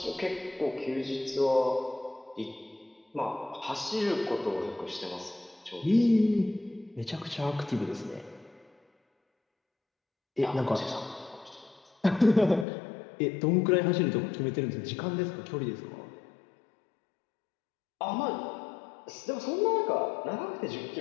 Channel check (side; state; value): right; drops out; at 12.7 s